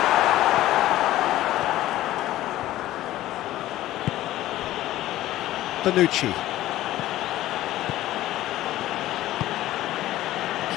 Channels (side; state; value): right; quieter; 14.9 dB